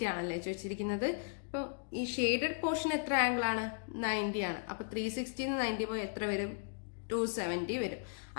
ആണല്ലേ ചോദിച്ചിരിക്കുന്നത്. ഇപ്പൊ ഈ ഷെയ്ഡഡ് പോർഷൻ എത്ര ആംഗിൾ ആണ്? 90 ആണ്. അപ്പൊ 360 90 പോയി എത്ര വരും? 270 വരും.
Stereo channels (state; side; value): silent; right; digital silence